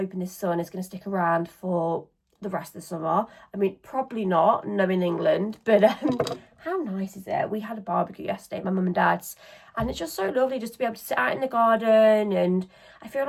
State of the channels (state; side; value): identical; both; correlation 1.00